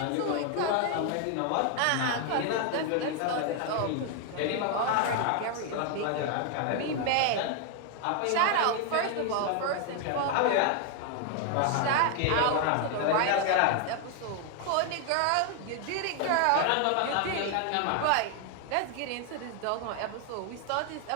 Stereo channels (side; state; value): both; different; correlation 0.00